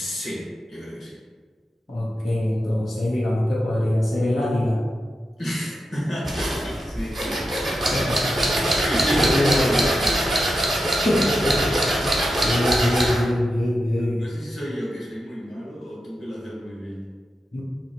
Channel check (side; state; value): both; normal; correlation 0.89